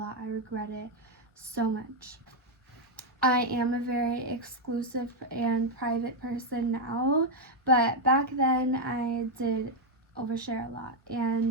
I regret it so much. I am a very exclusive and private person now, but back then I did overshare a lot,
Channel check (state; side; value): normal; both; correlation 0.01